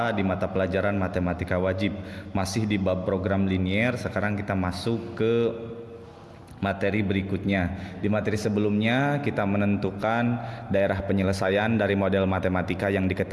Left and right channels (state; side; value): identical; both; correlation 1.00